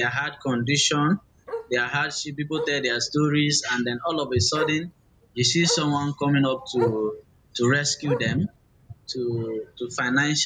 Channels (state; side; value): identical; both; correlation 1.00